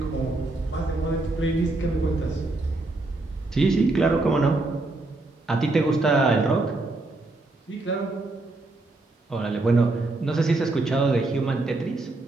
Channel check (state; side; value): quieter; left; 3.1 dB